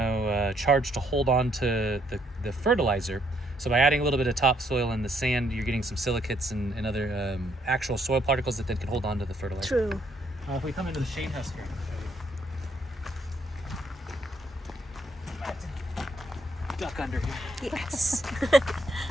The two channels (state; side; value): normal; both; correlation 0.70